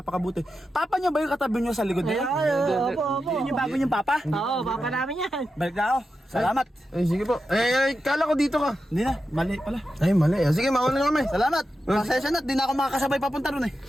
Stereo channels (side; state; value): both; normal; correlation 0.90